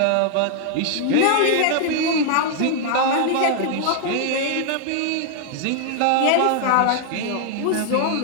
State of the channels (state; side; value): different; both; correlation 0.00